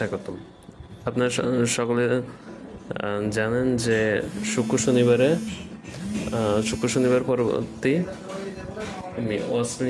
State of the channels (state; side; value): identical; both; correlation 1.00